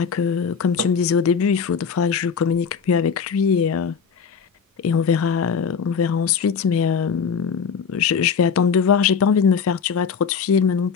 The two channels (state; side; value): quieter; right; 6.3 dB